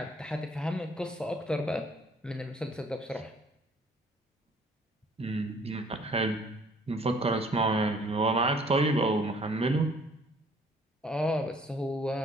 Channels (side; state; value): both; normal; correlation 0.58